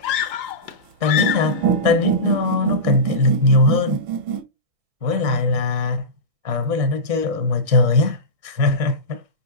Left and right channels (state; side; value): late; left; 1.6 ms